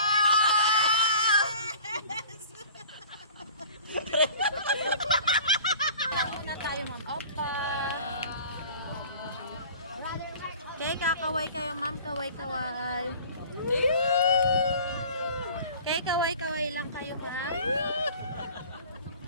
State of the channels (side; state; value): both; inverted; correlation -0.44